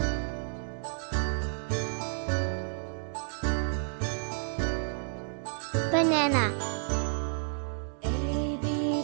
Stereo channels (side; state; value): left; silent; digital silence